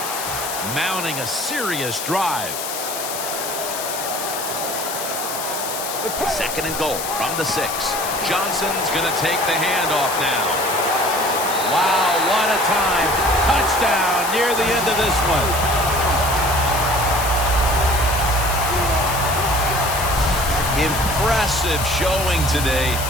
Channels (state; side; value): noise; left; hiss, 6 dB below the sound